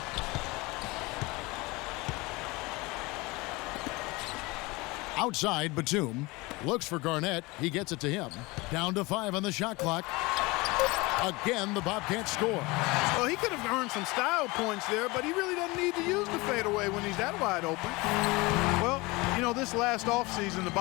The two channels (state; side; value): quieter; right; 23.7 dB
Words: Outside, Batum looks for Garnett. He gets it to him. Down to 5 on the shot clock. Again, the Bobcats score. Well, he could have earned some style points there, but he really doesn't need to use the fadeaway when he's that wide open. Well, this last offseason, the